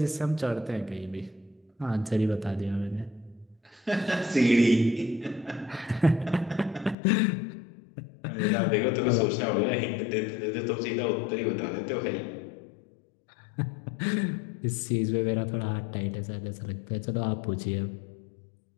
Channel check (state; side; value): drops out; right; at 7.0 s